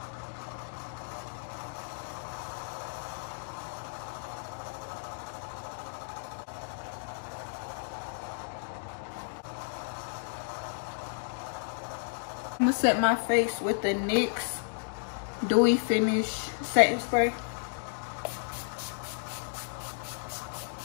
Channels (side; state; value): right; silent; digital silence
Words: I'm gonna set my face with the NYX Dewy Finish Setting Spray.